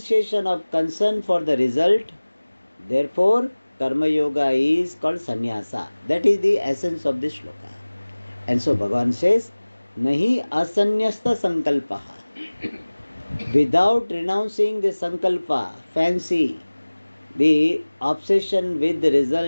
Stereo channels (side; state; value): both; inverted; correlation -1.00